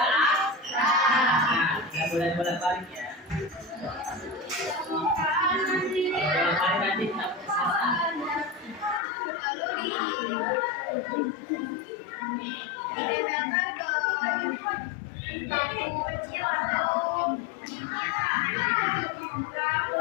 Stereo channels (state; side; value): drops out; right; at 9.0 s